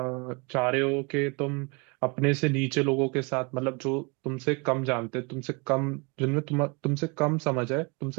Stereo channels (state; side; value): quieter; left; 29.9 dB